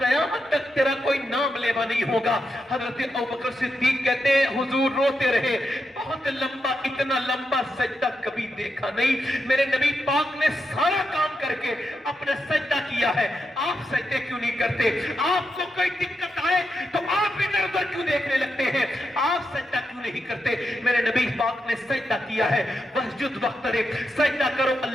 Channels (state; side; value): normal; both; correlation 0.85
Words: तक तेरा कोई नाम लेवा नहीं होगा। हजरत अबू बकर सिद्दीक कहते हैं हुजूर रोते रहे, बहुत लंबा, इतना लंबा सजदा कभी देखा नहीं। मेरे नबी पाक ने सारा काम करके अपना सजदा किया है, आप सजदे क्यों नहीं करते? आपको कोई दिक्कत आए तो आप इधर उधर क्यों देखने लगते हैं? आप सजदा क्यों नहीं करते? मेरे नबी पाक ने सजदा किया है, वस्जुद वक्तरिब, सजदा करो